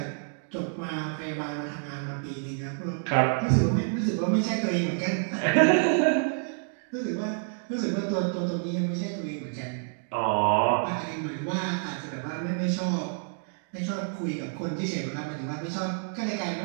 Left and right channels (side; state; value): left; silent; 59 dB below the other